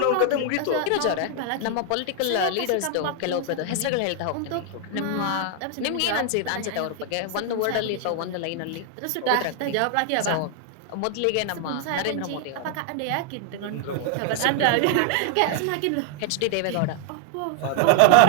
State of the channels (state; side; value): different; both; correlation 0.00